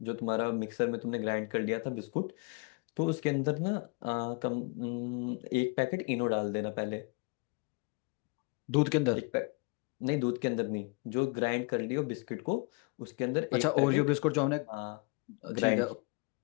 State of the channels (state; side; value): quieter; right; 31.1 dB